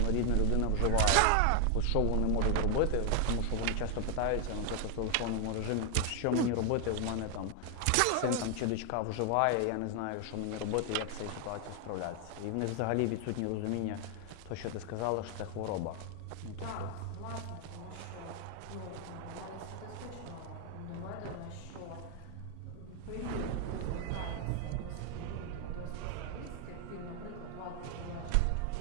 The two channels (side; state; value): both; different; correlation 0.00